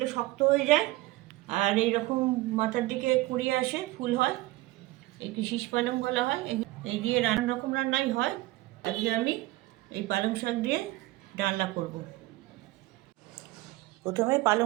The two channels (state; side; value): quieter; left; 19.2 dB